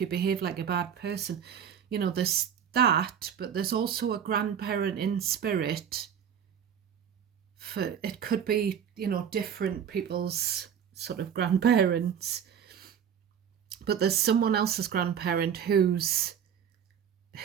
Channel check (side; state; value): left; quieter; 8.4 dB